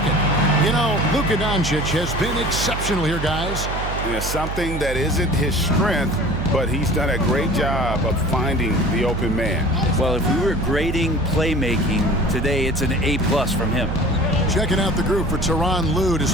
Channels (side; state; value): right; noise; hum, 5 dB below the sound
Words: You know, Luka Doncic has been exceptional here, guys. Yeah, something that isn't his strength, but he's done a great job of finding the open man. Well, if we were grading playmaking today, it's an A+ from him. Checking out the group for Tyronn Lue to